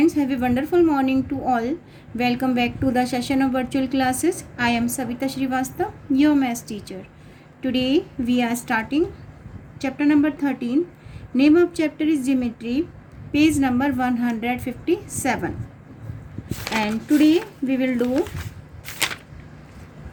have a wonderful morning to all. Welcome back to the session of virtual classes. I am Savita Srivastav, your maths teacher. Today we are starting chapter number 13. Name of chapter is Geometry, page number 157. And today we will do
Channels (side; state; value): both; identical; correlation 1.00